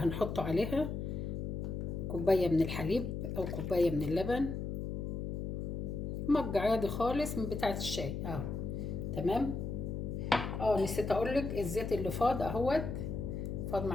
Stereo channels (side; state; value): left; noise; hum, 3 dB below the sound